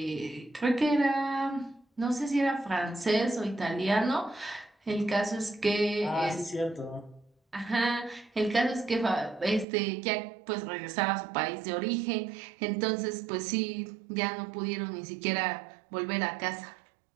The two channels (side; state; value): left; drops out; at 9.7 s